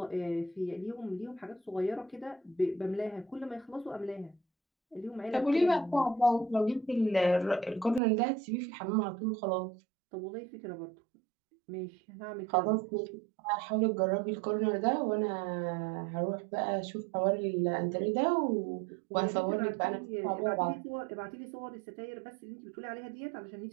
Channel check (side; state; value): left; drops out; at 8.0 s